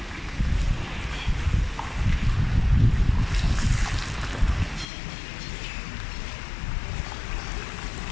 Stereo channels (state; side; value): drops out; right; at 4.9 s